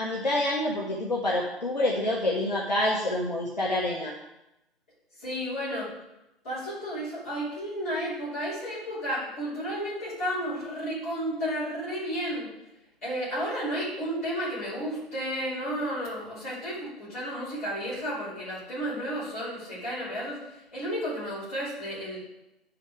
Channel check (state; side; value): normal; both; correlation 0.41